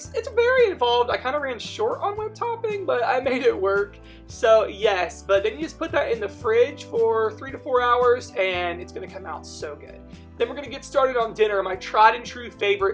very involved. I kind of ran short on whipped topping, but I made it work. So yes, but then you just put that in the fridge for 3 to 4 hours, and it's going to come out so good. Then we're going to get started on dinner. My tried and true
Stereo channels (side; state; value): both; identical; correlation 1.00